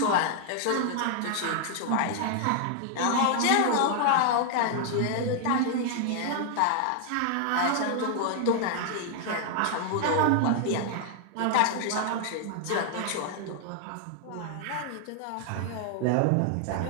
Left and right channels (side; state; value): both; different; correlation 0.00